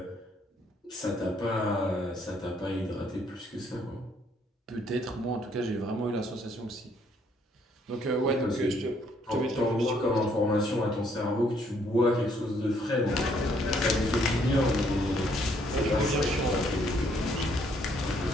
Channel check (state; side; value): normal; both; correlation 0.67